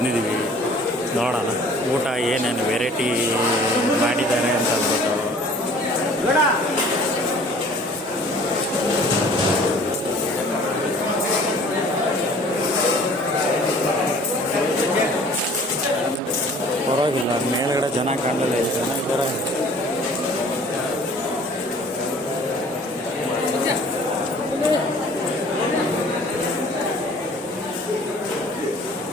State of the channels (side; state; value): both; normal; correlation 0.51